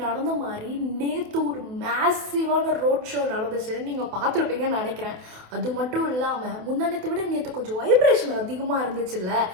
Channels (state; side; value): late; left; 28 ms